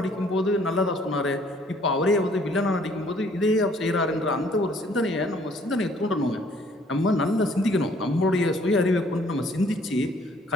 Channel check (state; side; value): normal; both; correlation 0.60